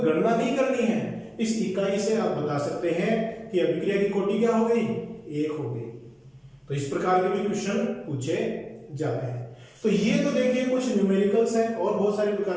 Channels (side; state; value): both; identical; correlation 1.00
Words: गणना नहीं करनी है, इस इकाई से आप बता सकते हैं कि अभिक्रिया की कोटि क्या हो गई, 1 हो गई। तो इस प्रकार के भी क्वेश्चन पूछे जाते हैं। तो ये तो देखिए कुछ न्यूमेरिकल्स हैं, और बहुत सारे